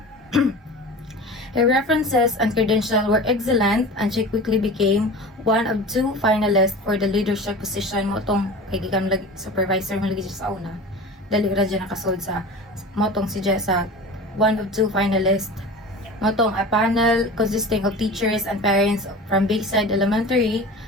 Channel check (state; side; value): normal; both; correlation 0.35